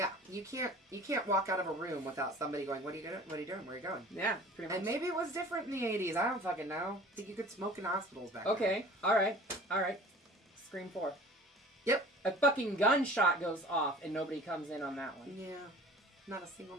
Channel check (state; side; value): normal; both; correlation 0.44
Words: You can't walk out of a room without somebody going, "What are you doing? What are you doing? Where are you going?" Yeah, pretty much. And maybe it was different in the 80s. I don't fucking know. I think you could smoke in hospitals back then. Okay. All right. Scream 4. Yep. A fucking gunshot goes off and nobody comes in on that one. Yeah. Not a single